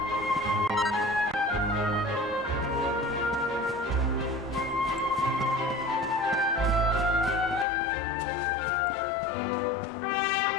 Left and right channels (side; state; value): right; drops out; at 7.7 s